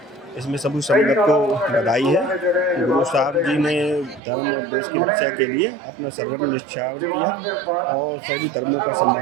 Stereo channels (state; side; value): drops out; left; at 4.2 s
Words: इसमें सभी संगत को बधाई है। गुरु साहब जी ने धर्म और देश की रक्षा के लिए अपना सर्वस्व न्यौछावर किया और सभी धर्मों का